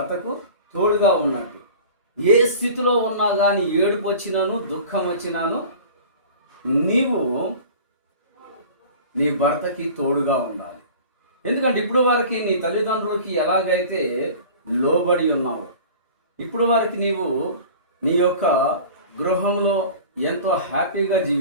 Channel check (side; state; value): both; inverted; correlation -0.41